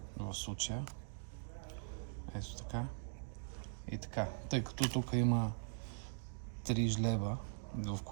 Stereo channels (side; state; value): left; silent; digital silence